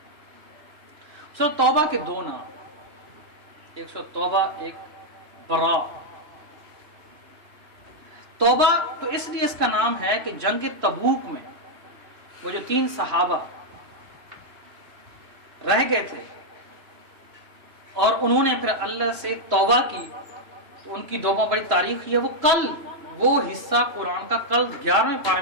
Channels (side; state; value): left; late; 3.0 ms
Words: سورۃ توبہ کے 2 نام، ایک سورۃ توبہ، ایک برا۔ توبہ تو اس لیے اس کا نام ہے کہ جنگ تبوک میں وہ جو 3 صحابہ رہ گئے تھے اور انہوں نے پھر اللہ سے توبہ کی تو ان کی توبہ بڑی تاریخ ہے. وہ کل وہ حصہ قرآن کا کل 11ویں پارے